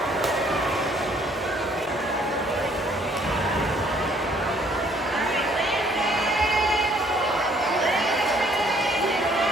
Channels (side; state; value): both; normal; correlation 0.62